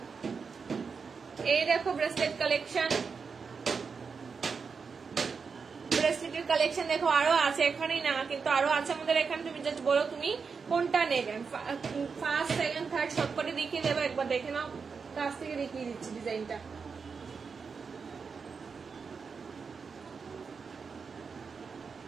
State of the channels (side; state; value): left; quieter; 5.4 dB